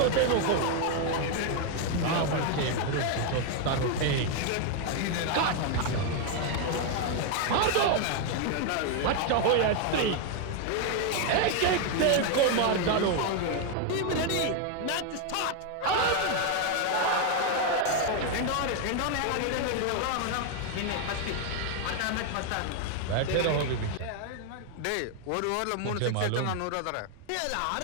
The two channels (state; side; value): different; both; correlation 0.01